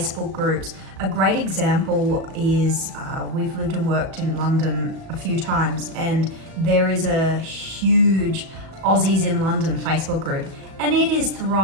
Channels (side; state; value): left; late; 37 ms